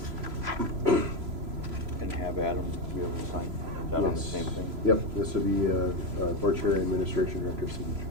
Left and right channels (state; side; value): late; left; 3.0 ms